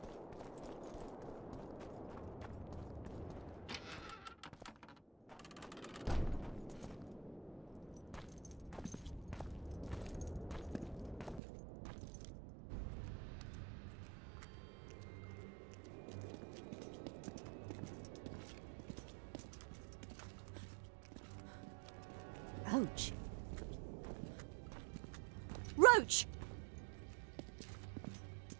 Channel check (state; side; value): drops out; left; at 11.4 s